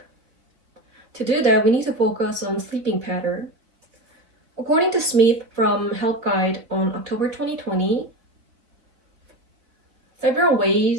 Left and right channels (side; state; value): left; late; 4.1 ms